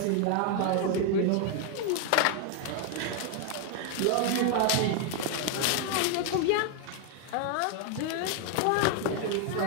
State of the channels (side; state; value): both; different; correlation 0.00